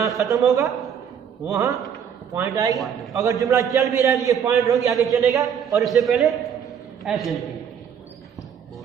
खत्म होगा वहाँ पॉइंट आएगी। अगर जुमला चल भी रहा है तो ये पॉइंट होगी, आगे चलेगा, और इससे पहले ऐसे लिखेंगे।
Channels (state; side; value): quieter; left; 8.0 dB